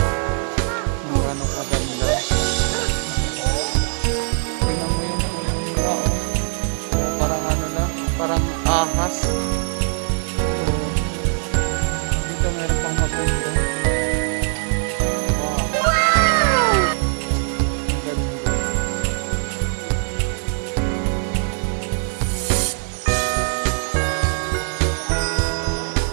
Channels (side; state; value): left; silent; 65 dB below the other